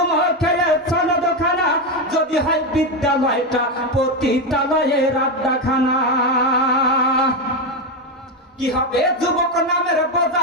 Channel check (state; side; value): normal; both; correlation 0.11